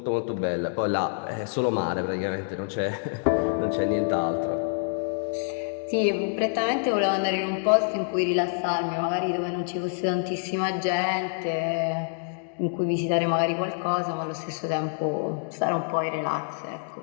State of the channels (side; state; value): right; silent; digital silence